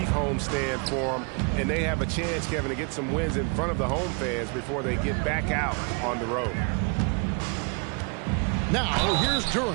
homestand for them, and they have a chance, Kevin, to get some wins in front of the home fans before they get back out on the road. Now, here's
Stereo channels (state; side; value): quieter; left; 35.3 dB